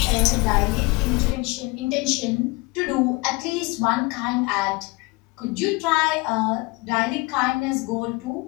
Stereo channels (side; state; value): right; quieter; 25.2 dB